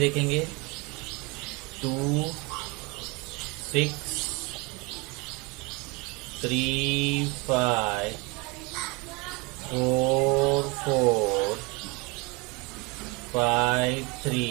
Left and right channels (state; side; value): quieter; left; 27.2 dB